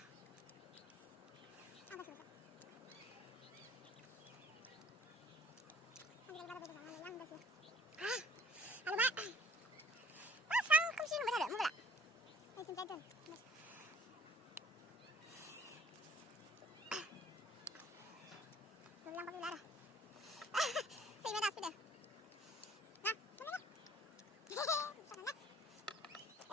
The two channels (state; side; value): normal; both; correlation 0.54